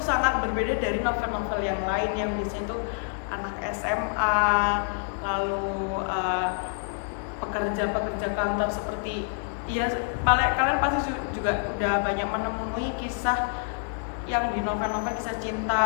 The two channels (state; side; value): silent; right; 60 dB below the other